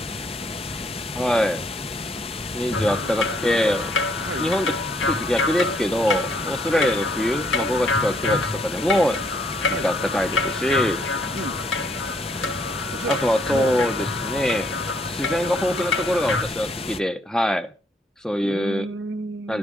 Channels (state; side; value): normal; both; correlation 0.69